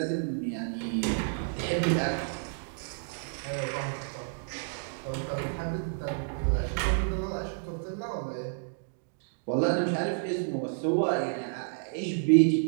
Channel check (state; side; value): silent; left; digital silence